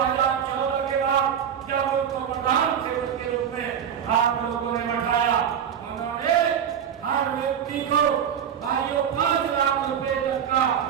के बाद जब उनको प्रधान सेवक के रूप में आप लोगों ने बैठाया, उन्होंने हर व्यक्ति को 5 लाख रुपए तक का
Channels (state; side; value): quieter; left; 8.5 dB